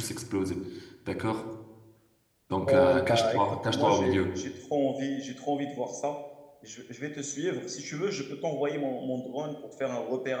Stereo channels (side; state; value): both; identical; correlation 1.00